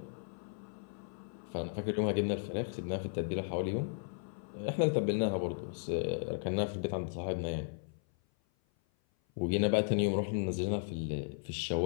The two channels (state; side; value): silent; right; 54 dB below the other